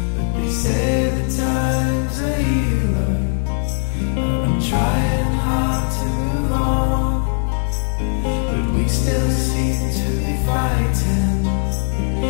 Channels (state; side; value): silent; right; 59 dB below the other